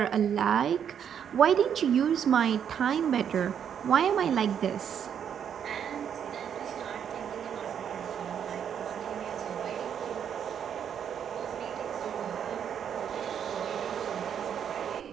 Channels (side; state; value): left; quieter; 8.4 dB